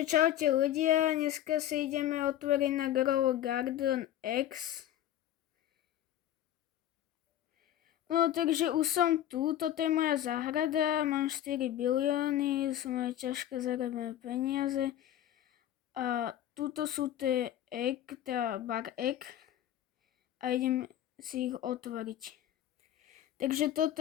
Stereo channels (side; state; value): right; quieter; 12.0 dB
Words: čaute ľudia, dneska si ideme otvoriť na Grow Garden X. No takže už som tu, toto je moja záhrada, mám 4 bilióny, sú moje ťažké zarobené peniaze. A tuto sú tie bar egg a idem si ich otvoriť. Takže